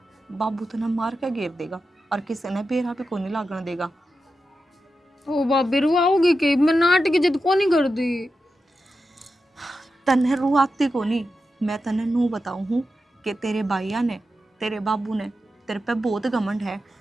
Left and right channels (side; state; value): both; normal; correlation 0.90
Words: बाबू तो मार के घेर देगा और किसी ने बेरा पे को नहीं लागण देगा। ओ भाभी रुआओगी कि मैं नाटक की जिद को नहीं कर दी। तन्ने रुआती को नहीं, मैं तन्ने नू बताऊं हूँ कि तेरे भाइया ने, तेरे बाबू ने तेरे पे बहुत घमंड है।